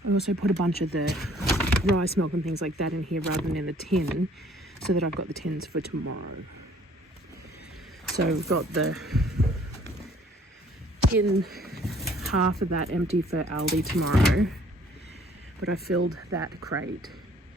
I also put a bunch of the rice milk and things like that in here rather than in the tin, so that I've got the tins for tomorrow. So we've got the tin, half of that empty for Aldi tomorrow. But I filled that crate.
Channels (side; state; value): both; normal; correlation 0.58